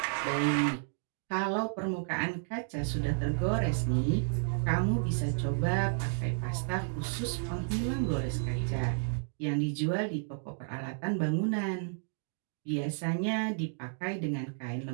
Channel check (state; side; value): silent; left; digital silence